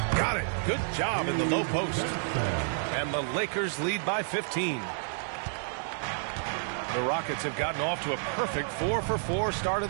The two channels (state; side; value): silent; left; 58 dB below the other